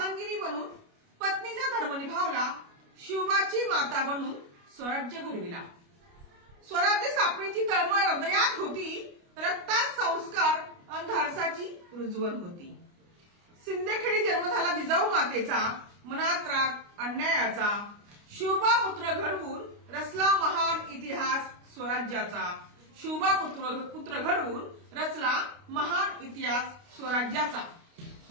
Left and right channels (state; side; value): late; left; 29 ms